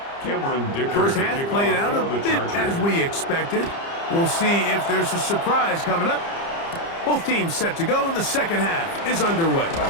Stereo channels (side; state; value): right; late; 30 ms